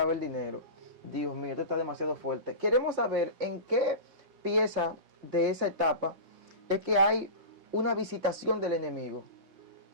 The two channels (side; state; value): left; late; 5.7 ms